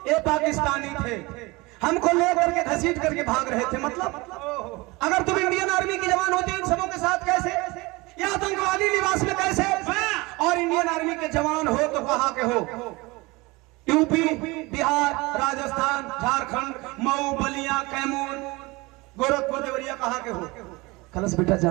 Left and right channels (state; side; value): quieter; left; 23.5 dB